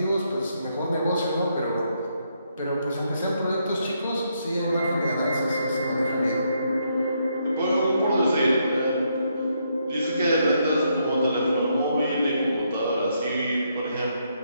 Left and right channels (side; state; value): both; inverted; correlation -0.76